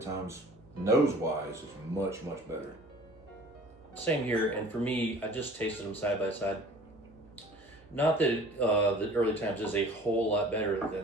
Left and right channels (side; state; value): both; normal; correlation 0.47